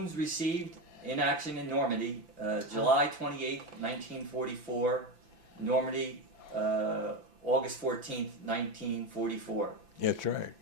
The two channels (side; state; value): left; late; 5.9 ms